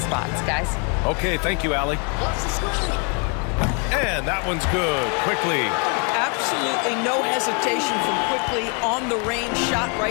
guys. Okay, thank you, Allie. And that one's good. Quickly. Absolutely no hesitation from Quickly on the range shot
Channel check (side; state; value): right; quieter; 36.5 dB